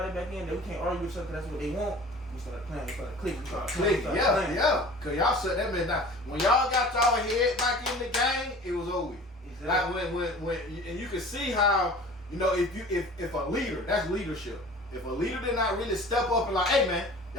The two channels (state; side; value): normal; both; correlation 0.43